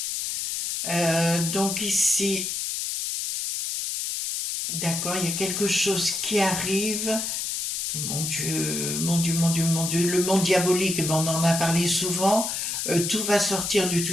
Donc ici, d'accord, il y a quelque chose qui arrive. Mon Dieu, mon Dieu, mon Dieu, mon Dieu, le monde diabolique, eh ben, on en a parlé souvent. Tout va sortir de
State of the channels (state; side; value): noise; left; hiss, 2 dB below the sound